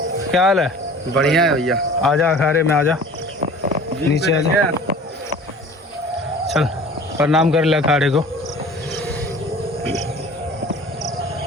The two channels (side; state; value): both; normal; correlation 0.44